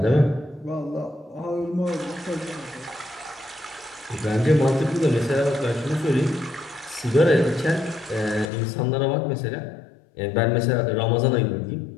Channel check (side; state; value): right; drops out; at 8.5 s